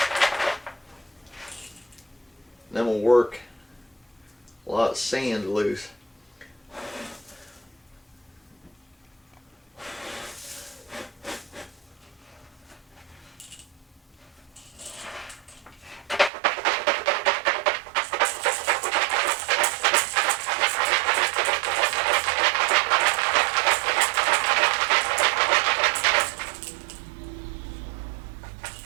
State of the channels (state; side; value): drops out; left; at 16.3 s